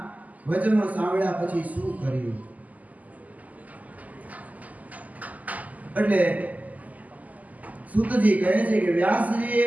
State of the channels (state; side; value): late; left; 0.077 ms